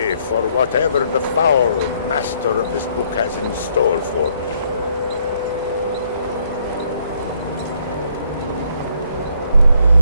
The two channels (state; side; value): inverted; both; correlation -0.68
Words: for whatever the foul master of this book has in store for me.